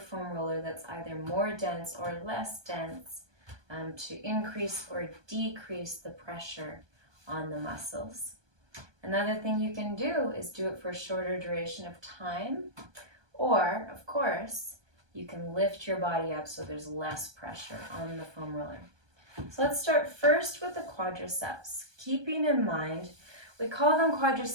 foam roller that's either more dense or less dense to increase or decrease the pressure on the muscles. Another thing you can do is do it for a shorter duration of time, or, of course, you can lift your body up so there's less pressure on the foam roller. So let's start first with the quadriceps. Keeping in mind, we call them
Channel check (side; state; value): left; late; 1.2 ms